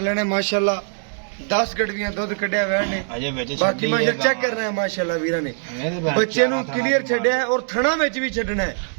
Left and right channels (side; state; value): left; silent; digital silence